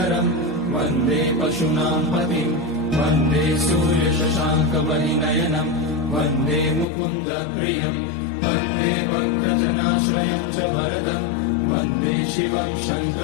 वन्दे पशूनां पतिं वन्दे सूर्यशशाङ्कवलिनयनं वन्दे मुकुन्दप्रियं वन्दे भक्तजनाश्रयं च वरदं वन्दे शिवं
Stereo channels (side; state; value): right; drops out; at 6.9 s